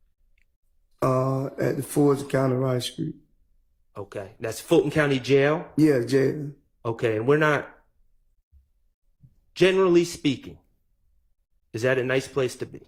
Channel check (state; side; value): identical; both; correlation 1.00